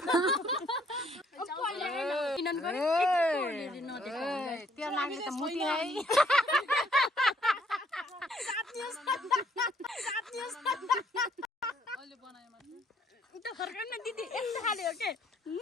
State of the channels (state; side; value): normal; both; correlation 0.65